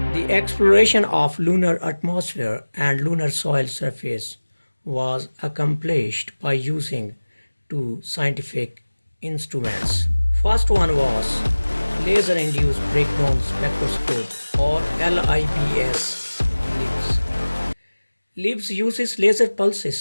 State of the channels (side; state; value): both; inverted; correlation -1.00